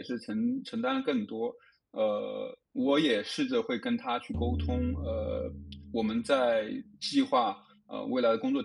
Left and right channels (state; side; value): identical; both; correlation 1.00